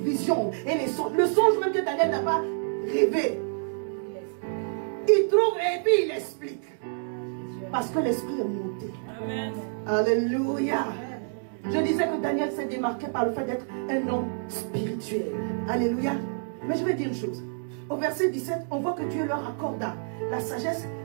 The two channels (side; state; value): left; silent; digital silence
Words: et les songes. Le songe même que Daniel n'a pas rêvé. Il trouve et puis il explique. Parce que l'esprit est monté. Amen. Alléluia. Je disais que Daniel s'est démarqué par le fait d'être un homme spirituel. Alléluia. Mais je vais dire une chose. au verset 17, on voit que Dieu leur accorda la sagesse,